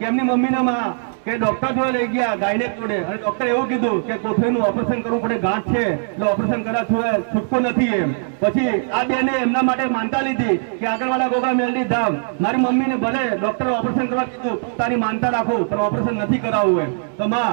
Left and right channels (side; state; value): left; silent; 61 dB below the other